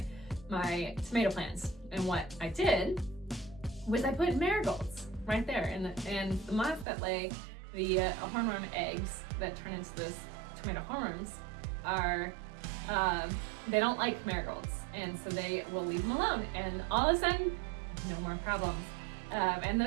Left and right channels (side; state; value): left; drops out; at 6.9 s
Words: tomato plants. And what I did was I put marigolds right there, and the moths that lay the hornworm eggs that turn into those tomato hornworms are, they don't like marigolds, and so they will leave them alone, and all of a sudden, no more problems. And